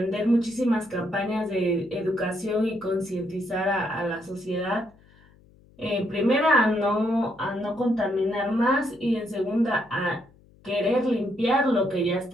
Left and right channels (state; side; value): noise; left; hum, 28 dB below the sound